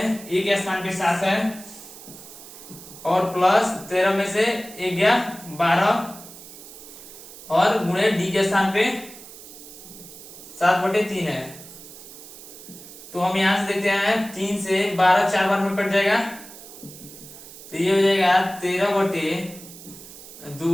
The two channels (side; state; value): right; noise; hiss, 16 dB below the sound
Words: ए के स्थान पे 7 है और प्लस 13 में से 1 गया 12 और गुणे डी के स्थान पे 7/3 है। तो हम यहां से देखते हैं 3 से 12 4 बार में कट जाएगा, तो ये हो जाएगा